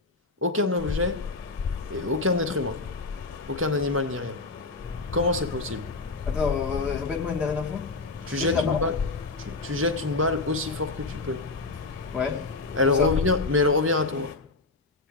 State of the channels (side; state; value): right; quieter; 3.4 dB